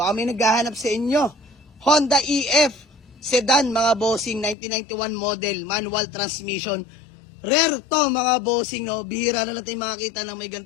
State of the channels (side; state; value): right; drops out; at 4.5 s